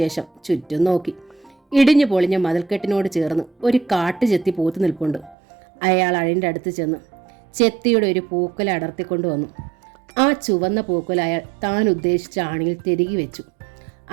ചുറ്റും നോക്കി. ഇടിഞ്ഞു പൊളിഞ്ഞ മതിൽക്കെട്ടിനോട് ചേർന്ന് ഒരു കാട്ടുചെത്തി പൂത്തു നിൽപ്പുണ്ട്. അയാൾ അഴിൻ്റെ അടുത്ത് ചെന്ന് ചെത്തിയുടെ ഒരു പൂക്കുല അടർത്തിക്കൊണ്ടുവന്നു. ആ ചുവന്ന പൂക്കുല അയാൾ താൻ ഉദ്ദേശിച്ച ആണിയിൽ തിരികെ വെച്ചു.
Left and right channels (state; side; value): drops out; left; at 5.4 s